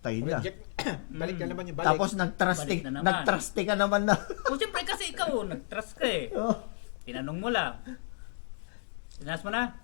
na. Project. Balik na naman yung balik. Tapos nag-trusty, Balik na naman. nag-trusty ka naman na. O siyempre kasi ikaw, nag-trust ka eh. Oh, Tinanong mo lang. Tinaas mo na?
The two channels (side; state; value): right; silent; digital silence